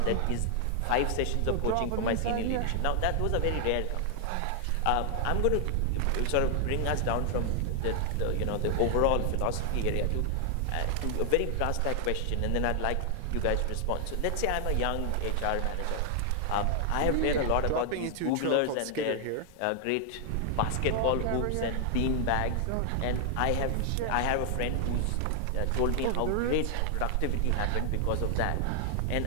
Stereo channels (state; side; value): different; both; correlation 0.00